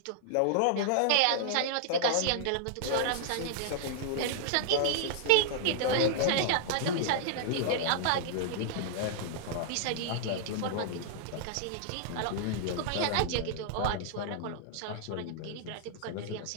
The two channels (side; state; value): both; different; correlation -0.01